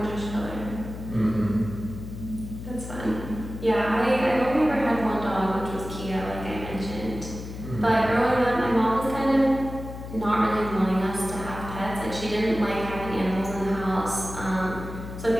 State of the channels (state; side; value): noise; left; hum, 10 dB below the sound